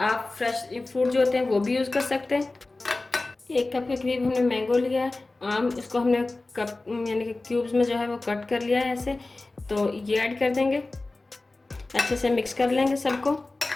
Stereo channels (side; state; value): right; quieter; 3.2 dB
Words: फ्रेश फ्रूट जो होते हैं वो भी यूज़ कर सकते हैं। 1 कप के करीब हमने मैंगो लिया है, आम। इसको हमने कप यानी कि क्यूब्स में जो है वो कट कर लिया है ऐसे। तो ये ऐड कर देंगे, अच्छे से मिक्स कर लेंगे सबको।